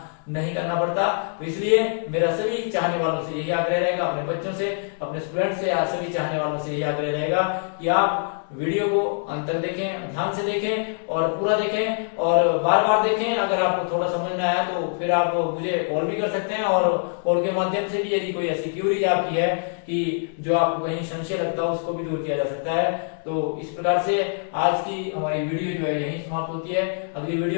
नहीं करना पड़ता। तो इसलिए मेरा सभी चाहने वालों से यही आग्रह रहेगा, अपने बच्चों से, अपने स्टूडेंट से, सभी चाहने वालों से यही आग्रह रहेगा कि आप वीडियो को अंत तक देखें, ध्यान से देखें और पूरा देखें और बार बार देखें। अगर आपको थोड़ा समझ ना आया तो फिर आप मुझे कॉल भी कर सकते हैं, और कॉल के माध्यम से भी यदि कोई ऐसी क्यूरीज आपकी है कि जो आपको कहीं संशय लगता है उसको भी दूर किया जा सकता है। तो इस प्रकार से आज की हमारी वीडियो जो है यही समाप्त होती है। अगली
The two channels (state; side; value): silent; right; digital silence